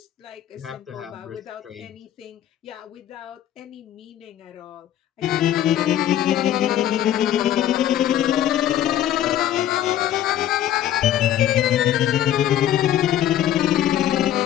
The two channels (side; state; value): right; quieter; 11.6 dB